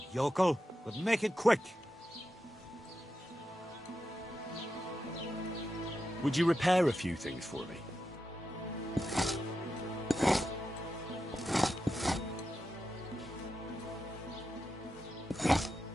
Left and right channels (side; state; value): both; normal; correlation 0.89